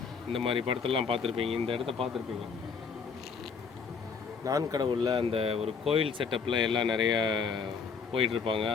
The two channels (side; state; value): right; quieter; 5.6 dB